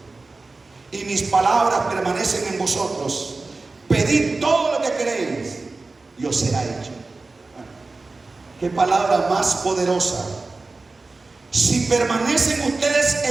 y mis palabras permanecen en vosotros, pedid todo lo que queréis y os será hecho. Qué palabra más poderosa. Si permanecen ustedes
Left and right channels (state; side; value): quieter; left; 3.6 dB